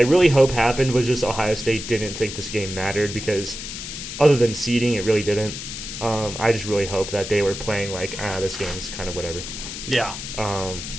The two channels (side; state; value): left; noise; hiss, 8 dB below the sound